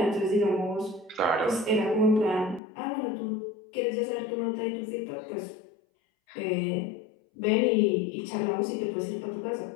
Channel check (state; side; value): drops out; right; at 2.6 s